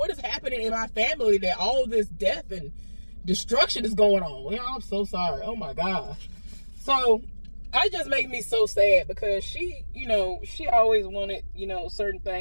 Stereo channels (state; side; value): inverted; both; correlation -1.00